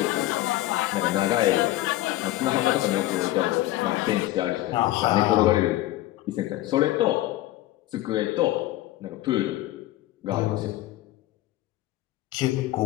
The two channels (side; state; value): right; quieter; 16.2 dB